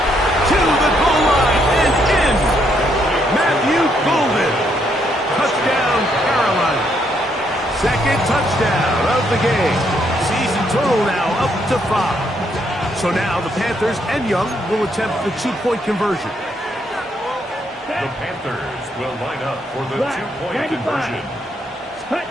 To the goal line and in. Matthew Golden. Touchdown, Carolina. 2nd touchdown of the game. Season total now up to 5. So now the Panthers and Young will attempt the 2-point conversion. The Panthers will line up for the 2-point conversion. That's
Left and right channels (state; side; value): normal; both; correlation 0.74